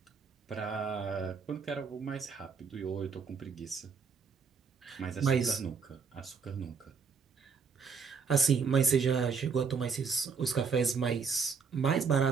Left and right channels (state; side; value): quieter; left; 5.6 dB